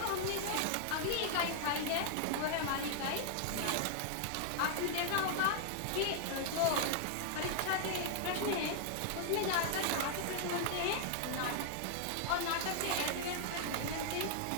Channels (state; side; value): different; both; correlation -0.01